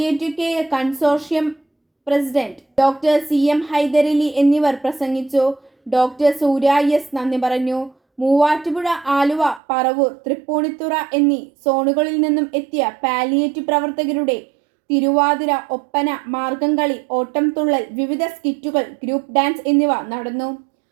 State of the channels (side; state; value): left; drops out; at 9.6 s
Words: care consortium president doctor CM Hyderali എന്നിവർ പ്രസംഗിച്ചു. ഡോക്ടർ സൂര്യ S നന്ദി പറഞ്ഞു. മൂവാറ്റുപുഴ, ആലുവ, പറവൂർ, തൃപ്പൂണിത്തുറ എന്നീ സോണുകളിൽ നിന്നും എത്തിയ പാലിയേറ്റീവ് പ്രവർത്തകരുടെ തിരുവാതിര, ഒപ്പന, മാർഗംകളി, ഓട്ടംതുള്ളൽ, വിവിധ സ്കിറ്റുകൾ, ഗ്രൂപ്പ് ഡാൻസ് എന്നിവ നടന്നു.